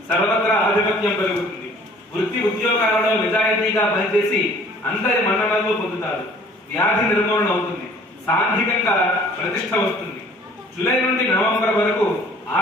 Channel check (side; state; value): both; normal; correlation 0.53